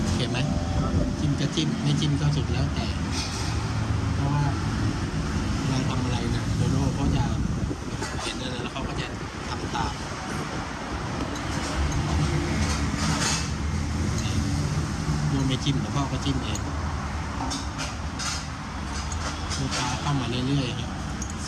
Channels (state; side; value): identical; both; correlation 1.00